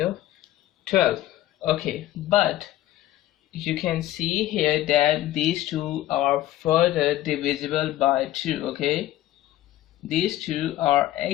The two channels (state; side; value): quieter; right; 14.4 dB